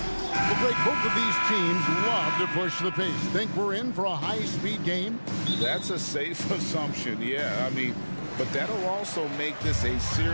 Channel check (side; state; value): both; inverted; correlation -1.00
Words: break, both of these teams love to push the pace. Think we're in for a high-speed game? That's a safe assumption, yeah. I mean, but that'll also make this a